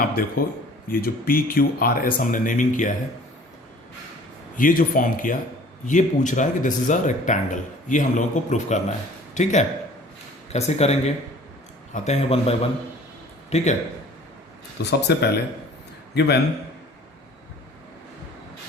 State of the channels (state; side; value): normal; both; correlation 0.49